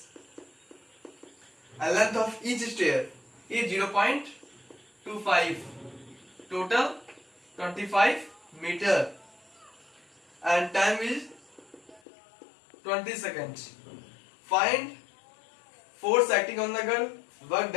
And length of each stair is 0.25. Total 25 meter. And time is 20 seconds. Find force acting on the girl, work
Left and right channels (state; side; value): drops out; right; at 12.0 s